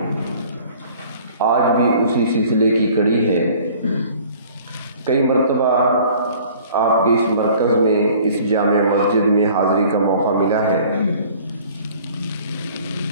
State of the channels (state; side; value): inverted; both; correlation -0.51